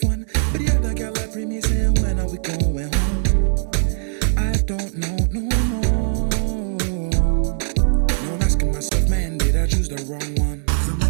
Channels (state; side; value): silent; left; 63 dB below the other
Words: one. But the other girl I bring me saying when are we going home? I don't know no more. Now I'm asking myself, man, did I choose the wrong one? Cause I'm